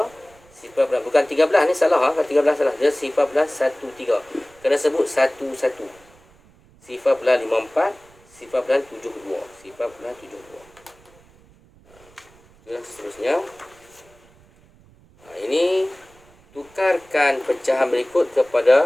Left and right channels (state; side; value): noise; right; rumble, 28 dB below the sound